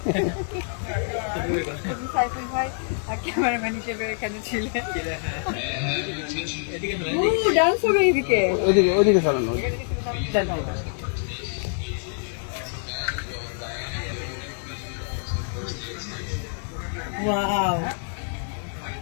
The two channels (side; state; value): right; silent; 61 dB below the other